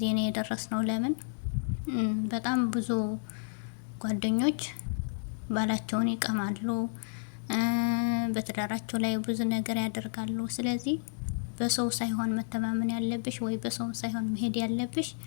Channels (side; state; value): right; silent; digital silence